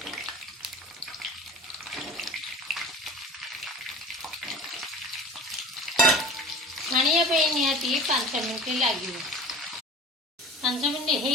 छाणिया निहाती 5 मिनट लगे 5 मिनट हो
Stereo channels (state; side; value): normal; both; correlation 0.39